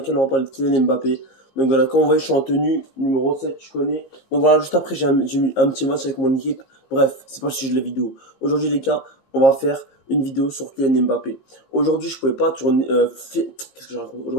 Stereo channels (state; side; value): late; right; 19 ms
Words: on va parler de Kylian Mbappé. Donc voilà, comme vous voyez, je suis en tenue numéro 7, je connais. Donc voilà, juste après j'ai mis un petit match avec mon équipe. Bref, c'est pas le sujet de la vidéo. Aujourd'hui les gars, on va faire une vidéo sur Kylian Mbappé. Aujourd'hui je pouvais pas tourner... Qu'est-ce que je raconte?